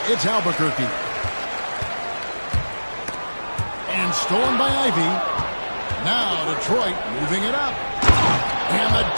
it's Albuquerque. And stolen by Ivy. Now Detroit moving it up. And the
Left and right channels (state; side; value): inverted; both; correlation -1.00